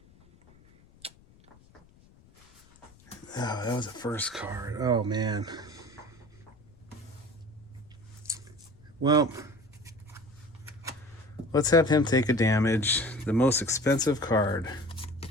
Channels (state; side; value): noise; left; rumble, 27 dB below the sound